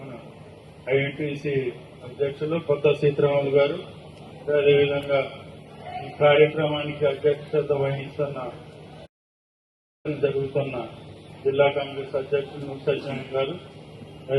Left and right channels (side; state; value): both; identical; correlation 1.00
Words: ఐఎన్టీసీ అధ్యక్షులు కొత్త సీతారాములు గారు, అదేవిధంగా ఈ కార్యక్రమానికి అధ్యక్షత వహిస్తున్న జరుగుతున్న జిల్లా కాంగ్రెస్ అధ్యక్షులు సత్యనారాయణ గారు,